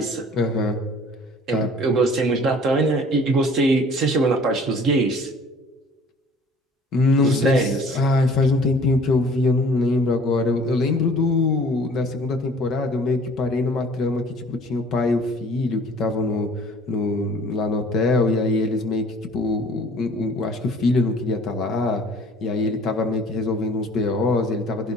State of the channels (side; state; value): both; normal; correlation 0.51